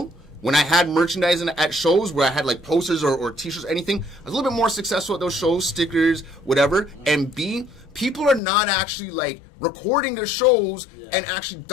When I had merchandising at shows where I had like posters or t-shirts or anything, I was a little bit more successful at those shows, stickers, whatever. And B, people are not actually like recording their shows and actually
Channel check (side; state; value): right; drops out; at 8.4 s